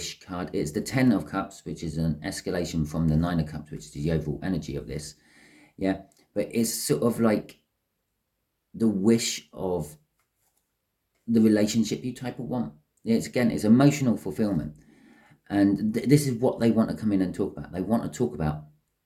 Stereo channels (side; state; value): both; identical; correlation 1.00